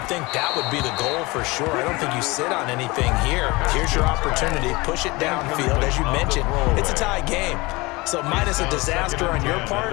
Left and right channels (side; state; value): right; quieter; 23.5 dB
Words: think that would be the goal for sure. I don't think you sit on anything here. Here's your opportunity. Push it downfield. As you mentioned, it's a tie game. So minus a disaster on your